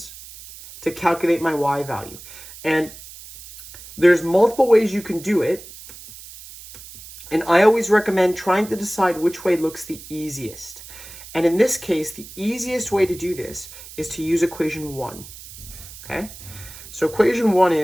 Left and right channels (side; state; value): right; noise; hiss, 16 dB below the sound